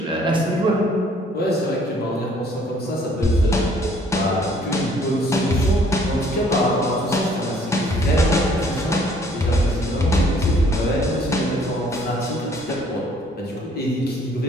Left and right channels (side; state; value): both; normal; correlation 0.60